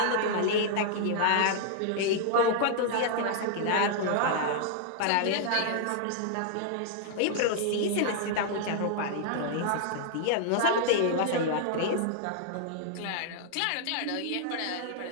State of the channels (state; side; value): different; both; correlation -0.01